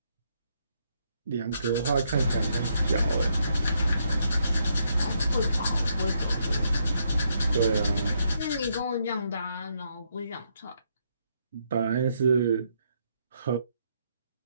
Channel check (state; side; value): inverted; both; correlation -0.76